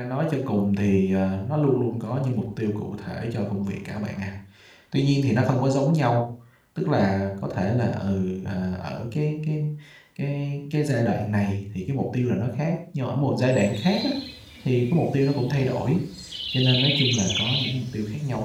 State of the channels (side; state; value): both; identical; correlation 1.00